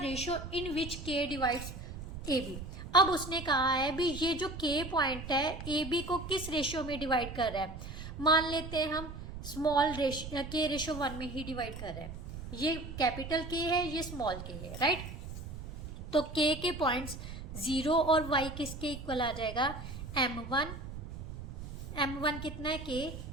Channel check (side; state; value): right; noise; rumble, 10 dB below the sound